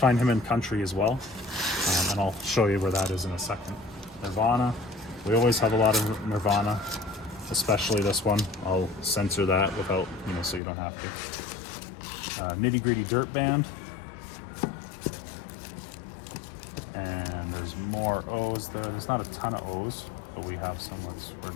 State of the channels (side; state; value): right; drops out; at 10.6 s